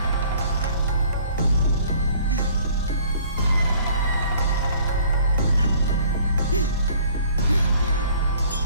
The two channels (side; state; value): both; inverted; correlation -0.54